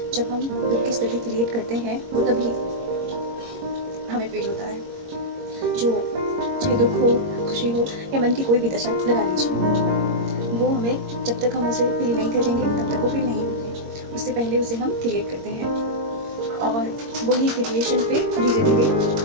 जब हम दुख की स्थिति क्रिएट करते हैं वो तभी हमें फील होता है। जो चाहे दुख हो, खुशी हो या मन की कोई भी दशा लगा लीजिए, वो हमें जब तक हम उसे फील नहीं करेंगे तब तक वो फील नहीं होगी। उससे पहले उसे हम क्रिएट करते हैं और वही क्रिएशन फिर धीरे धीरे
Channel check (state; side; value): late; left; 22 ms